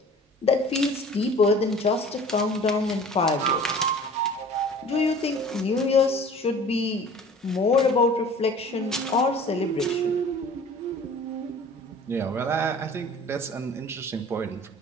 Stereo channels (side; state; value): both; normal; correlation 0.45